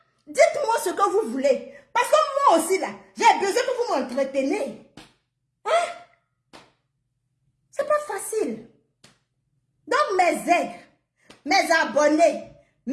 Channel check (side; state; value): both; identical; correlation 1.00